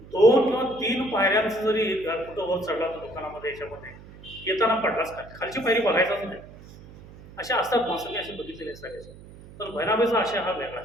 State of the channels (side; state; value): right; noise; hum, 19 dB below the sound